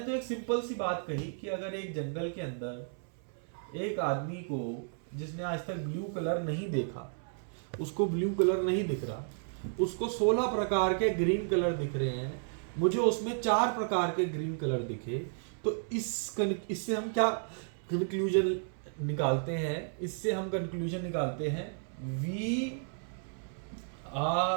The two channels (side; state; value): left; silent; 56 dB below the other